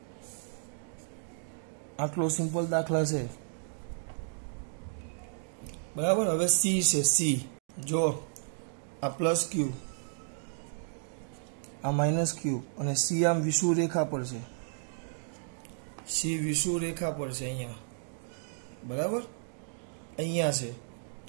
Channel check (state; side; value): silent; left; digital silence